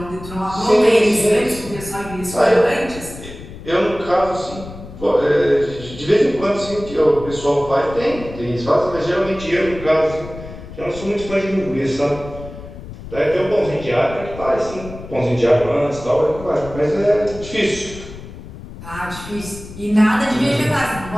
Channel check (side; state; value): left; noise; rumble, 14 dB below the sound